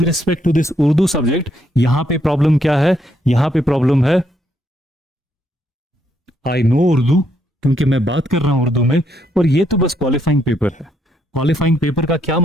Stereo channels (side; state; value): both; normal; correlation 0.74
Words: respect to this Urdu subject, यहां पे प्रॉब्लम क्या है? यहां पे प्रॉब्लम है आई नो उर्दू, क्योंकि मैं बात कर रहा हूं उर्दू में, और ये तो बस क्वालिफाइंग पेपर है। क्वालिफाइंग पेपर का क्या